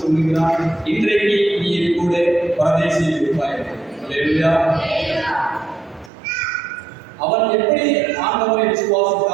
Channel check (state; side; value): drops out; left; at 6.1 s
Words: சொல்லுகிறார், இன்றைக்கு நீ என் கூட பரதேசியில் இருப்பாய். அவன் எப்படி ஆண்டவரை